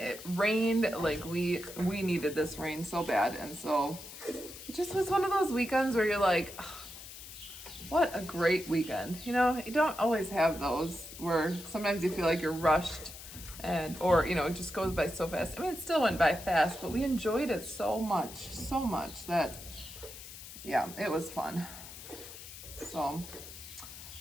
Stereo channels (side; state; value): left; noise; hiss, 13 dB below the sound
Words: rained. We needed this rain so bad, and so it just was one of those weekends where you're like, oh, what a great weekend. You don't always have those where sometimes you feel like you're rushed, or it just goes by so fast. I mean, it still went by fast, but we enjoyed it so much that, yeah, it was fun. So,